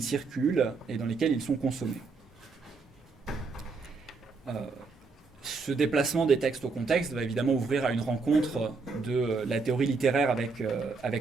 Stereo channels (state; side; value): quieter; left; 4.4 dB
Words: circulent et dans lesquels ils sont consommés. Ce déplacement des textes au contexte va évidemment ouvrir à une rencontre de la théorie littéraire